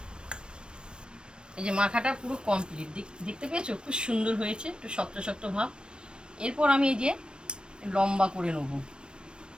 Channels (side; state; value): left; late; 0.054 ms